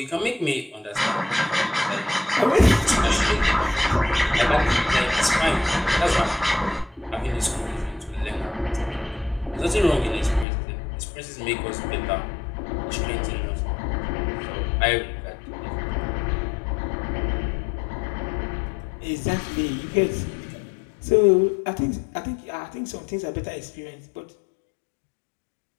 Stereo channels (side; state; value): right; drops out; at 10.5 s